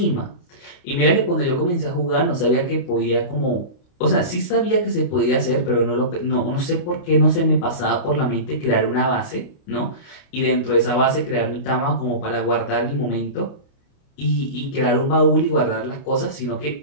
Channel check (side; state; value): right; late; 29 ms